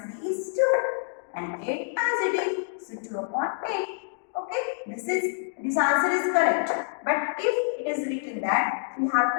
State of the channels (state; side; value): silent; right; digital silence